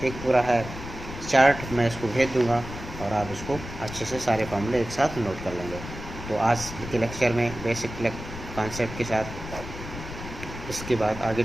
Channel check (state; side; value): noise; left; rumble, 10 dB below the sound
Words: एक पूरा है चार्ट, मैं इसको भेज दूंगा और आप इसको अच्छे से सारे फॉर्मूले एक साथ नोट कर लेंगे। तो आज के लेक्चर में बेसिक कॉन्सेप्ट के साथ इसके बाद आगे